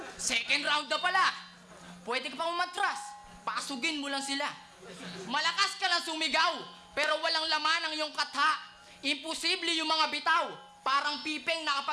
second round na pala. Pwede ka pa umatras. Pasugin mo lang sila. Malakas ka lang sumigaw, pero walang laman ang iyong katha. Imposible yung mga bitaw. Parang pipeng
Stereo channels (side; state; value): both; identical; correlation 1.00